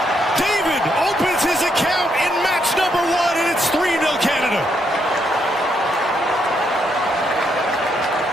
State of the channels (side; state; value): both; normal; correlation 0.76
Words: David opens his account in match number 1, and it's 3-0 Canada.